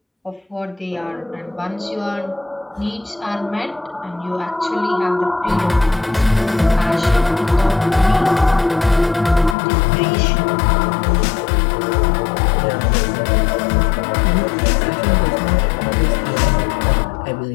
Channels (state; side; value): drops out; right; at 9.6 s